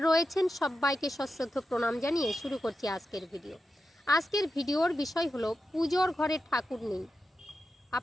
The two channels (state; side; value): normal; both; correlation 0.90